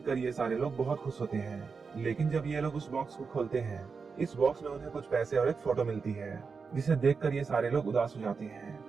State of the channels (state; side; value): quieter; left; 5.1 dB